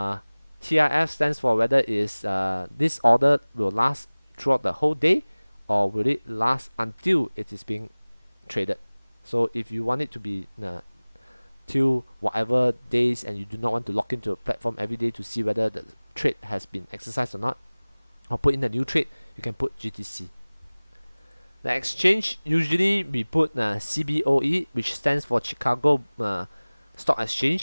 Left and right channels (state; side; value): inverted; both; correlation -1.00